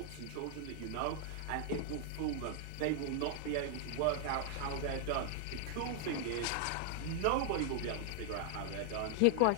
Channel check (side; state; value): both; different; correlation 0.00